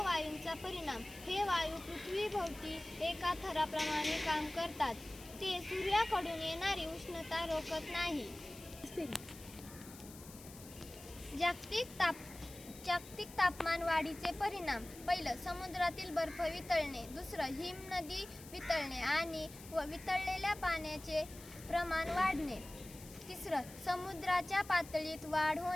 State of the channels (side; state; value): left; noise; hiss, 17 dB below the sound